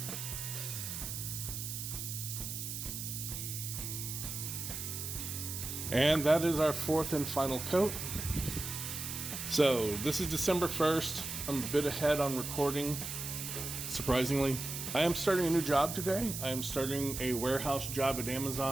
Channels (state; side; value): noise; right; hiss, 5 dB below the sound